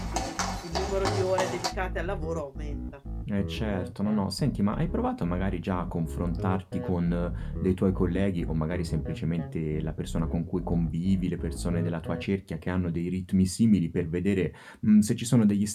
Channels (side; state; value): both; identical; correlation 1.00